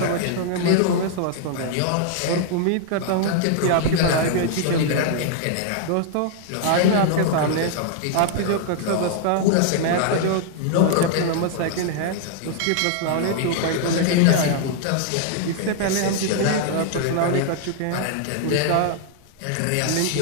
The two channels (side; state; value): both; different; correlation -0.01